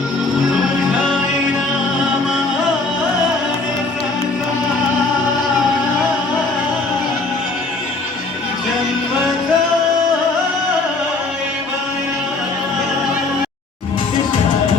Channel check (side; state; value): right; quieter; 3.4 dB